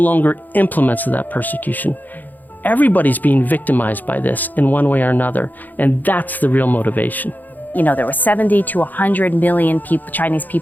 implements of that persecution. Everybody's being victimized by this in one way or another, and that's the real motivation. There were 70 to 100 million people, Chinese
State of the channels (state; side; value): late; right; 0.084 ms